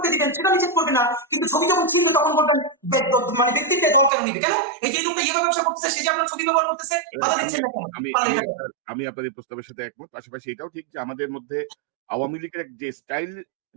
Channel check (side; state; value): left; drops out; at 4.1 s